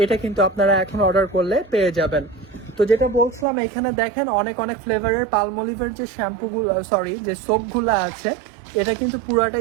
এটা কিন্তু আপনারা এখন অর্ডার করলে পেয়ে যাবেন। তো যেটা বলছিলাম, এখানে দেখেন অনেক ফ্লেভারের পালমলিভের যে শ্যাম্পুগুলো, সরি যে সোপগুলো আছে, এটা কিন্তু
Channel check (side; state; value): left; drops out; at 3.5 s